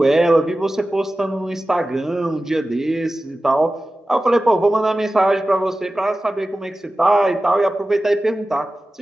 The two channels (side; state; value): both; normal; correlation 0.95